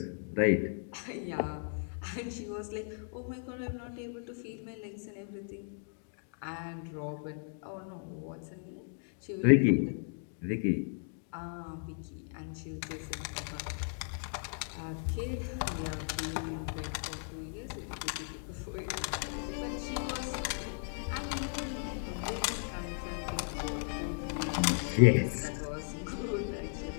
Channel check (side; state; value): right; silent; digital silence